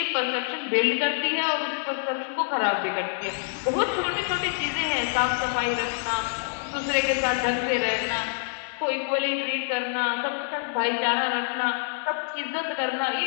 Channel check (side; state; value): right; silent; digital silence